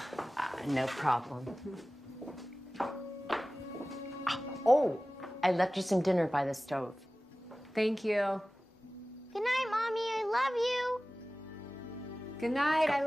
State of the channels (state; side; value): normal; both; correlation 0.97